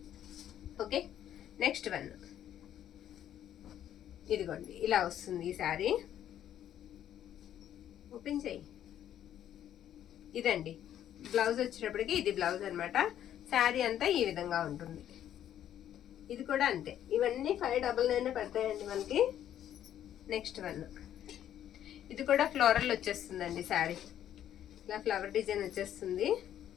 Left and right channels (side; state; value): right; quieter; 10.9 dB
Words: ఓకే, నెక్స్ట్ వన్, ఇదిగోండి ఇలా వస్తుంది ఈ శారీ. ఓపెన్ చేయి. ఇదండి బ్లౌజ్ వచ్చేటప్పటికి ఇది బ్లౌజ్ అనమాట. శారీ అంతా ఈ విధంగా ఉంటుంది. ఇది కూడా అంతే. ఇవన్నీ 599 పడతాయండి మనకి. నెక్స్ట్ వన్, ఇది కూడా ఫ్లోరల్ వచ్చేస్తుందండి. శారీ ఇలా ఫ్లవర్ డిజైన్ వచ్చేస్తుంది.